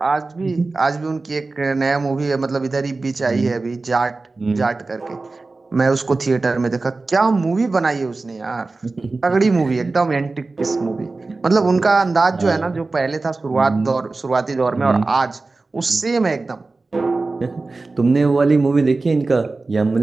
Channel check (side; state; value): left; quieter; 3.6 dB